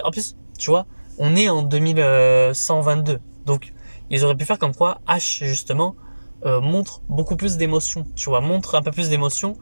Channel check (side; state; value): both; inverted; correlation -1.00